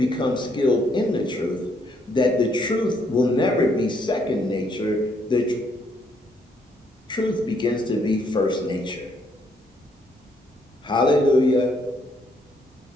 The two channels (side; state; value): both; normal; correlation 0.71